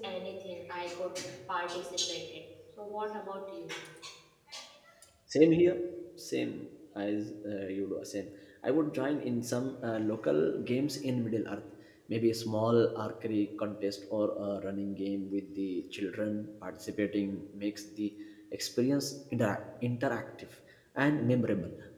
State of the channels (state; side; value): identical; both; correlation 1.00